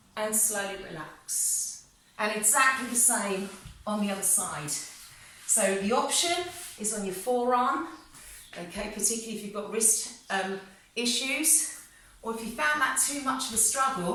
And slowly relax. And exactly the same on the other side. So the option is on your forearm, okay, particularly if you've got wrist issues, or if you found that too much of a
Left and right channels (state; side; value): identical; both; correlation 1.00